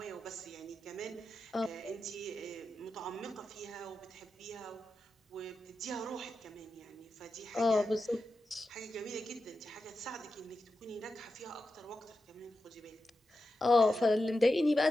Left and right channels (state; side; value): normal; both; correlation 0.90